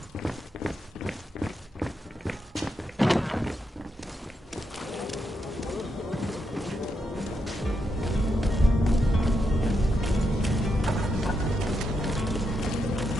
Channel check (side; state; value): both; normal; correlation 0.83